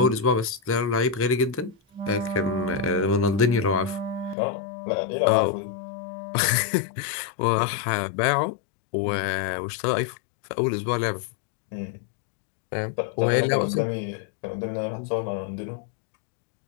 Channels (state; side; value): drops out; right; at 4.4 s